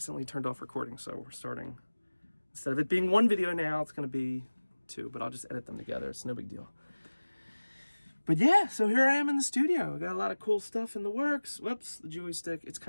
turned off recording, so we're starting. Instead of it being one video now, it's going to be two, but I'll just edit them together. It's no big deal. But yeah, so here I am in the studio. I got a lot of cool stuff in the works. Whoops, the joystick. It's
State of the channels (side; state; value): both; inverted; correlation -1.00